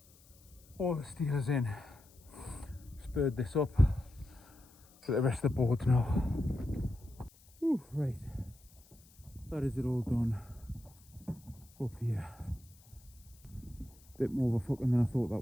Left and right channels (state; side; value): noise; left; hiss, 27 dB below the sound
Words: all the steel is in. Spurred this up for the rest of the boards now. Ooh, right, that is it all done up here. Bit more of a fucking than I thought that